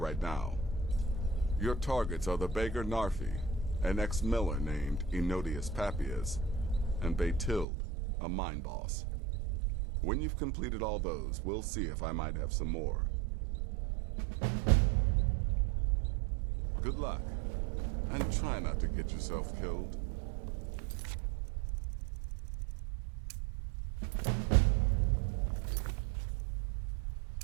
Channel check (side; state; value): left; drops out; at 7.7 s